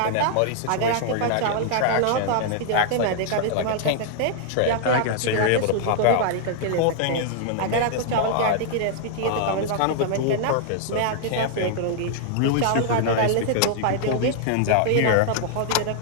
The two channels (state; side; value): different; both; correlation -0.01